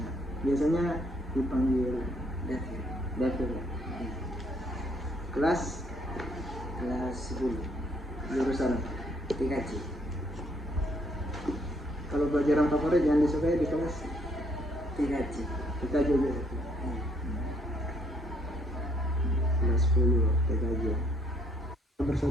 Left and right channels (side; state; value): both; normal; correlation 0.67